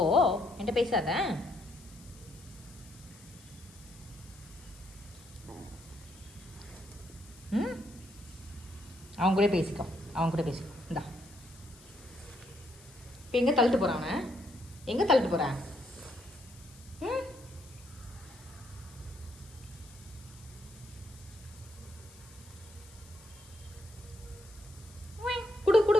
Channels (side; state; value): left; noise; hiss, 22 dB below the sound